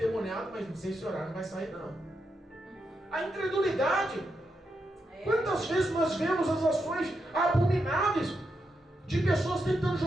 mas não sei se orar não vai sair não. A incredulidade. Quantas vezes nós vemos as ações abomináveis de pessoas tentando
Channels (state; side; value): normal; both; correlation 0.84